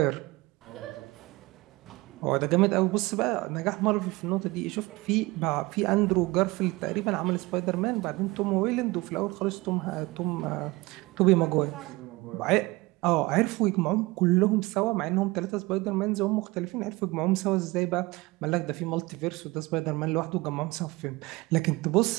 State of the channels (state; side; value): quieter; left; 22.1 dB